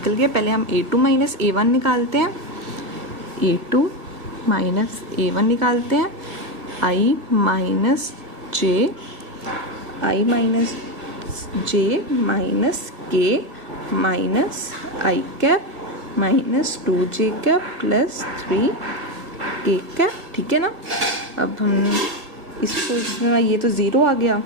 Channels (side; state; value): left; late; 1.6 ms